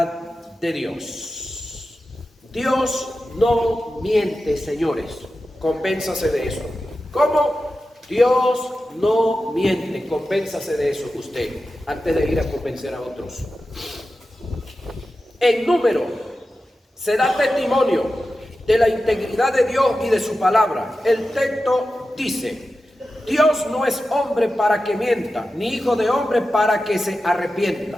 de Dios. Dios no miente, señores. Convénzase de eso. ¿Cómo? Dios no miente. Convénzase de eso usted, antes de ir a convencer a otros. En Número se da testimonio de la integridad de Dios y de su palabra. El texto dice: Dios no es hombre para que mienta, ni hijo de hombre para que se arrepienta.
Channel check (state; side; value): normal; both; correlation 0.93